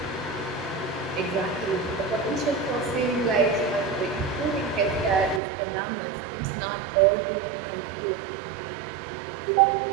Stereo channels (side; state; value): left; drops out; at 5.4 s